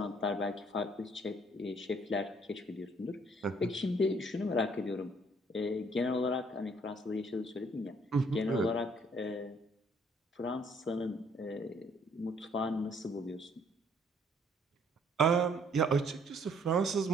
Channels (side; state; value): both; normal; correlation 0.63